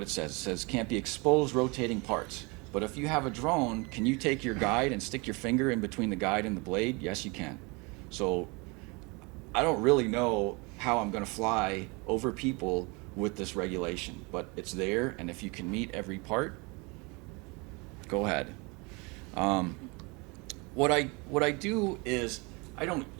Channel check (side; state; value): left; quieter; 28.3 dB